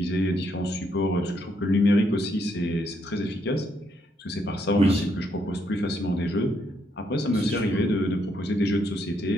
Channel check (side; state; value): both; normal; correlation 0.75